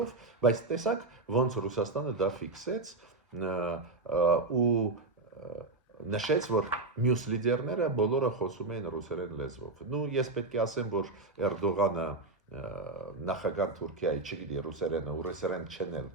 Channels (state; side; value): quieter; left; 3.3 dB